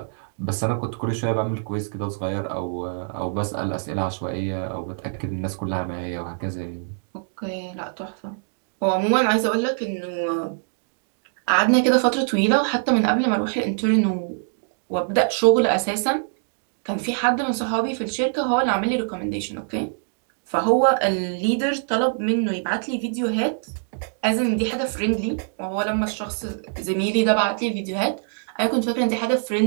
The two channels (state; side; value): silent; left; digital silence